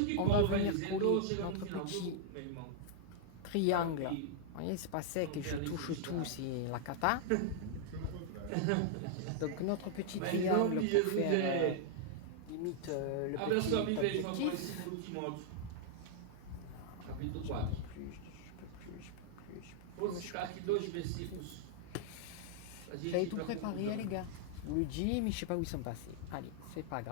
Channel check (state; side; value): different; both; correlation -0.01